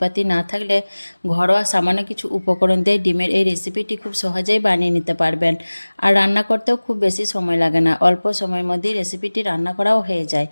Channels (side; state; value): both; inverted; correlation -1.00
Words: না থাকলে ঘরোয়া সামান্য কিছু উপকরণ দিয়ে ডিমের এই রেসিপিটি খুব সহজেই বানিয়ে নিতে পারবেন। আর রান্না করতেও খুব বেশি সময় লাগে না, অল্প সময়ের মধ্যেই রেসিপিটি রান্না করাও হয়ে যায়।